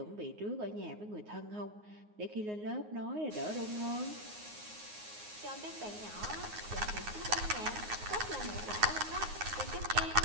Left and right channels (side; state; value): left; late; 9.6 ms